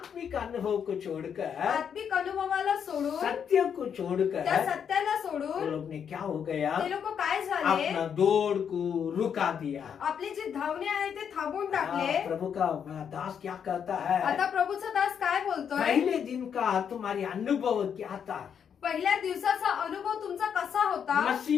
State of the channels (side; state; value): right; quieter; 7.7 dB